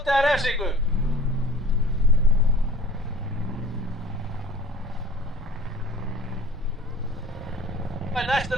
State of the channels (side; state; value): both; normal; correlation 0.45